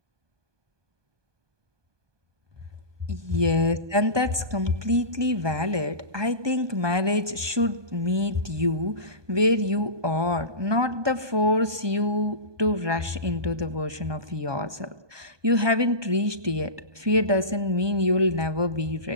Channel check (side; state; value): left; late; 1.2 ms